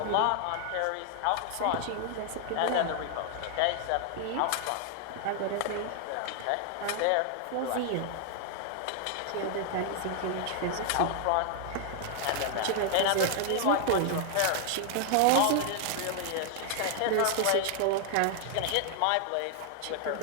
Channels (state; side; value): different; both; correlation 0.00